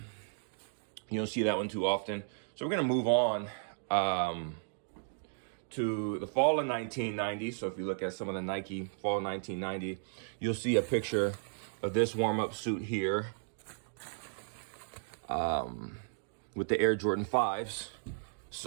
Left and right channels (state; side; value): silent; left; digital silence